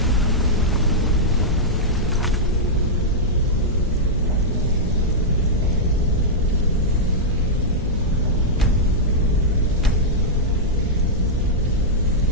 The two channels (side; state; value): both; normal; correlation -0.07